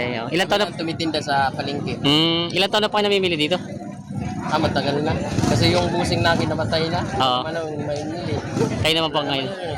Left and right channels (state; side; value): identical; both; correlation 1.00